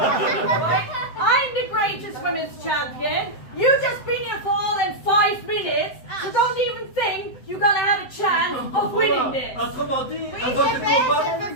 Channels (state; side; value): late; right; 7.8 ms